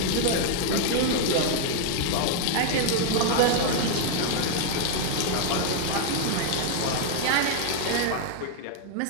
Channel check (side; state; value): both; different; correlation 0.00